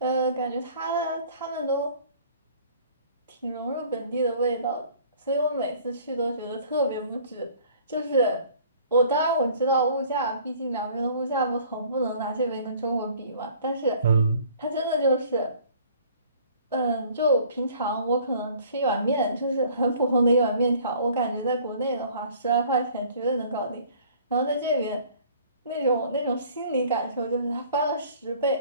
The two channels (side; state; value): both; inverted; correlation -0.53